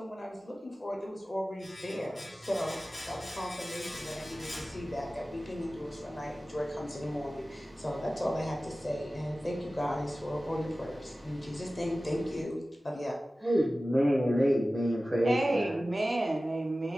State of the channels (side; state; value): both; normal; correlation 0.96